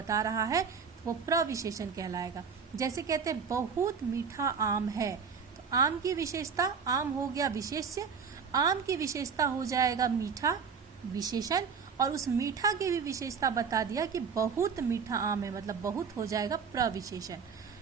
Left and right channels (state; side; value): quieter; left; 6.1 dB